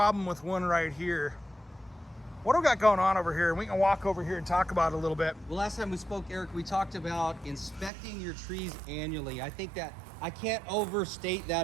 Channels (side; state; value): left; drops out; at 7.9 s